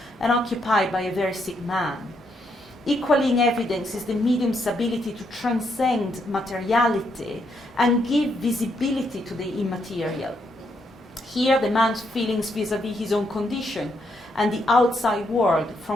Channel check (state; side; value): normal; both; correlation 0.76